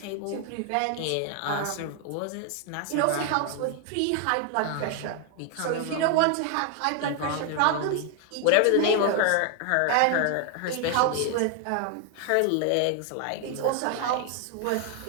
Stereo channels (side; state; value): both; different; correlation 0.00